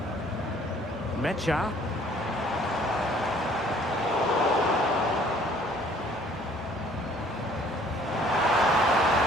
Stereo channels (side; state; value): both; normal; correlation 0.57